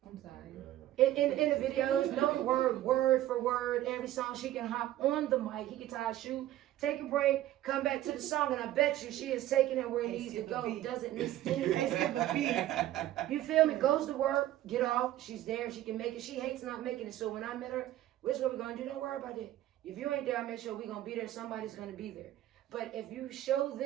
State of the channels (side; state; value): left; quieter; 13.9 dB